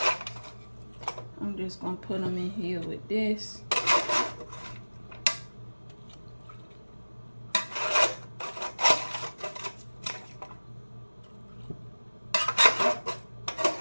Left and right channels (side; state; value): both; inverted; correlation -1.00